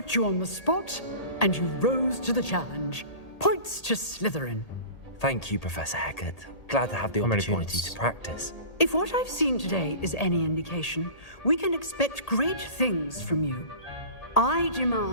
you on the spot, and you rose to the challenge. Points to Slytherin. Thank you, Professor Hecat. Glad to have the How many opportunity points? to practice. If what I've seen today is any indication, we can expect great things from you. I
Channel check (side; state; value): right; late; 1.8 ms